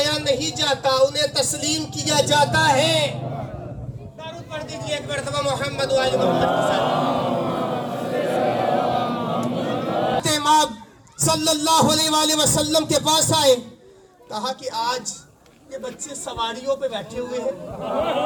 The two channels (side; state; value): both; identical; correlation 1.00